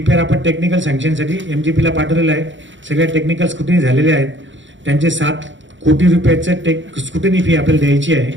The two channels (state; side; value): late; left; 0.55 ms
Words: आपण टेक्निकल सँक्शनसाठी MGPला पाठवलेला आहे. सगळ्या टेक्निकल स्क्रुटिनी झालेले आहेत. त्यांचे 7 कोटी रुपयाचं स्क्रुटिनी फी आपल्याला द्यायची आहे.